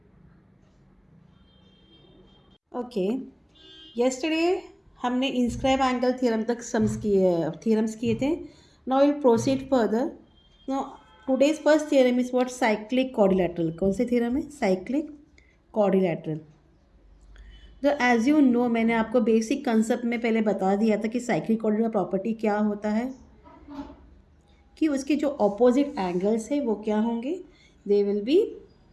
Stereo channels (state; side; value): identical; both; correlation 1.00